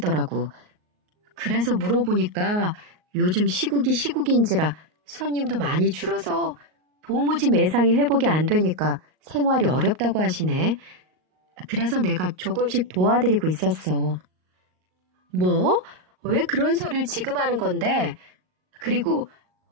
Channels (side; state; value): left; late; 38 ms